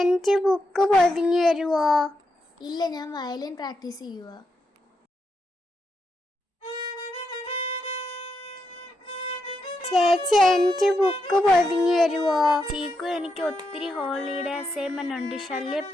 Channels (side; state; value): both; normal; correlation 0.83